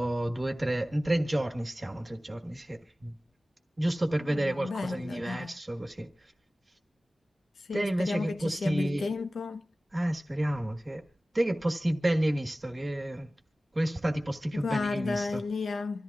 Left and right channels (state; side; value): normal; both; correlation 0.97